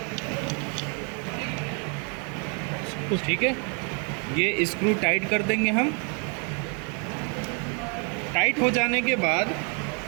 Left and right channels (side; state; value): left; quieter; 37.9 dB